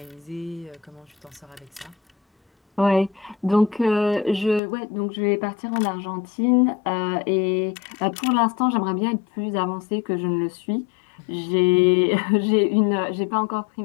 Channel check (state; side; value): drops out; right; at 4.6 s